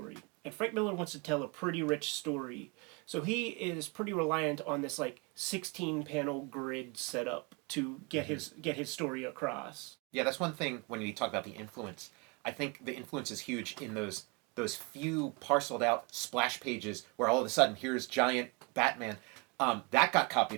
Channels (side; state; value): left; quieter; 28.8 dB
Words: And Frank Miller wants to tell a pretty rich story, so he is pretty reliant on this like 16 panel grid setup to get his story across. Yeah, that's one thing when we talk about the influence. I think the influence is huge in those few parceled out splash pages where all of a sudden here's giant Batman. That got